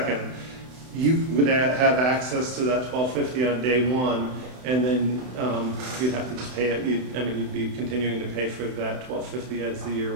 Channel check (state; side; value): late; left; 31 ms